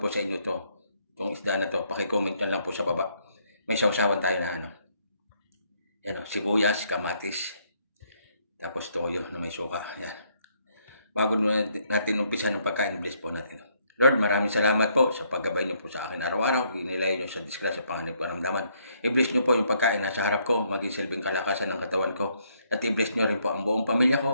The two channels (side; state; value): both; inverted; correlation -0.71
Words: sa inyo to? Itong isda na to, pakicomment na lang po sa baba. May sausawan tayo na Yan sibuyas, kamatis. Tapos toyo na may suka. Yan. Bago natin umpisa ng pagkain, bless po natin. Lord, maraming salamat po sa paggabay niyo po sa akin araw-araw. Inilay niyo sa disgrasya, panganib, karamdaman. I-bless niyo po yung pagkain nasa harap ko, maging silbing kalakasan ng katawan ko. At i-bless niyo rin po ang buong pamilya